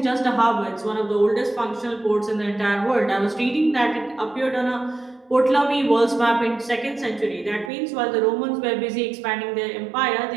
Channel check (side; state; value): left; drops out; at 7.7 s